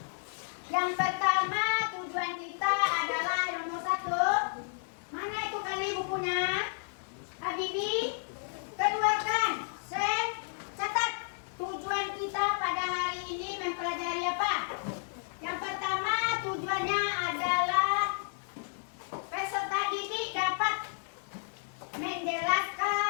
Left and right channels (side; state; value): right; silent; 56 dB below the other